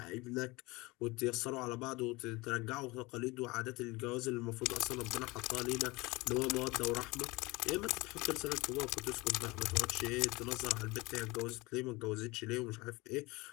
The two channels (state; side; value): quieter; right; 23.1 dB